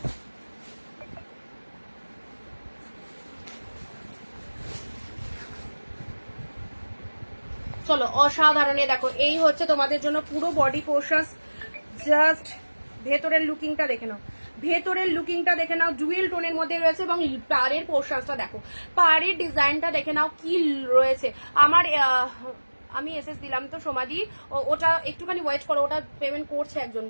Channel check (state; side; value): inverted; both; correlation -1.00